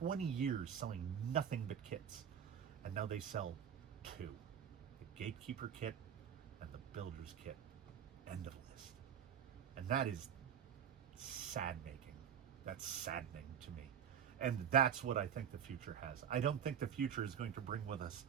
years selling nothing but kits, and now they sell two: the Gatekeeper kit and the Builder's kit. End of list. And that is sad-making. That's saddening to me. And that's what I think the future has. I don't think the future is going to bring with us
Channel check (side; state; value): left; quieter; 8.6 dB